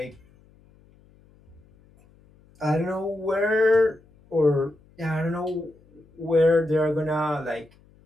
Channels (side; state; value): left; noise; hum, 30 dB below the sound